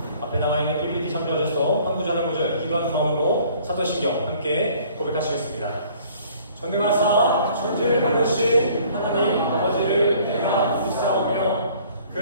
앞에 나와 있는 PPT 참조하셔서 한 구절 한 구절 기도하는 마음으로 사도신경 함께 고백하시겠습니다. 전능하사 천지를 만드신 하나님 아버지를 내가 믿사오며 그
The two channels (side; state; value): both; inverted; correlation -0.55